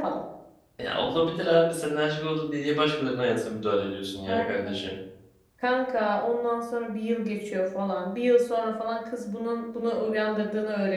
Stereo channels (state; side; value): identical; both; correlation 1.00